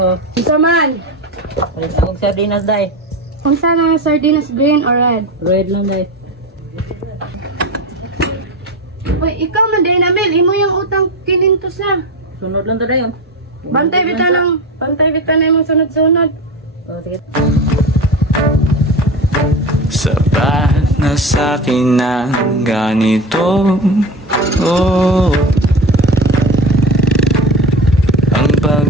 Isa man. Palit akong sardinas, day. Kung saan ang sardinas, green or red? Red lang, day. Uy, ikaw man din, Amel. Imo yung utang kinintos na. Sunod lang to, day. Oh. Bantay bita na yung sunod-sunod. Oh, sige. Sapat na sa'kin ang ganito. Oh, ang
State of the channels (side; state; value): both; normal; correlation 0.24